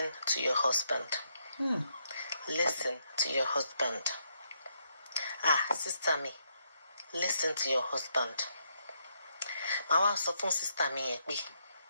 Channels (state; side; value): inverted; both; correlation -0.77